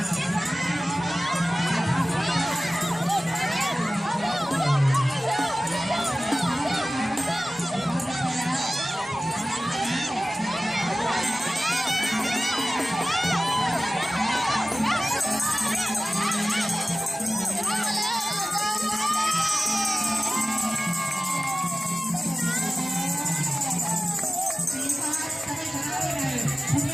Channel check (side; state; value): both; normal; correlation 0.97